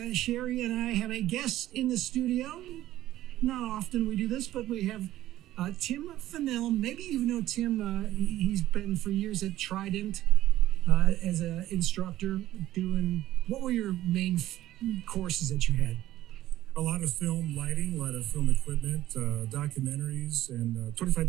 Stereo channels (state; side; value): quieter; left; 14.3 dB